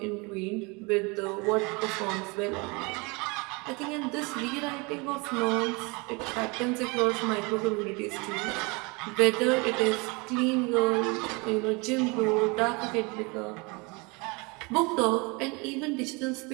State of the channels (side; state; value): left; quieter; 28.2 dB